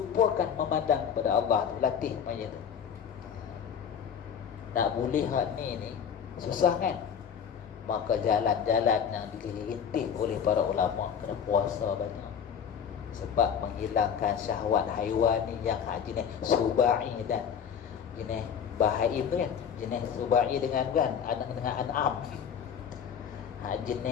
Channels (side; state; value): right; quieter; 7.8 dB